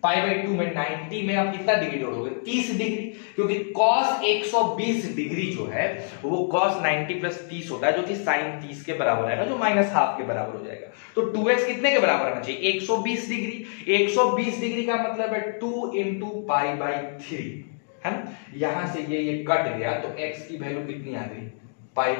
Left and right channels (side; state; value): right; silent; digital silence